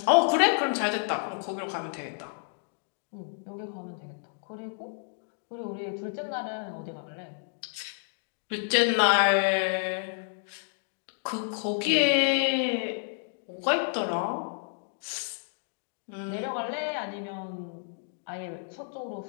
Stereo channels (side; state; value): right; silent; digital silence